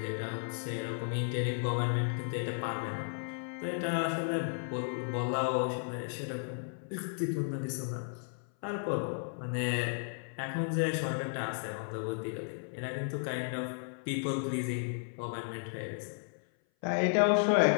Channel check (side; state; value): right; silent; 55 dB below the other